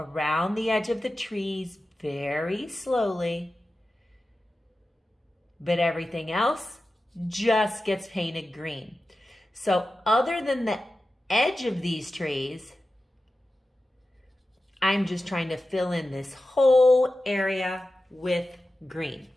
the edge of the trees very slowly, but everything else just gets painted green. So other than the edge of these trees, I'm just trying to fill in this whole area with green.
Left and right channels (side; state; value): both; normal; correlation 0.94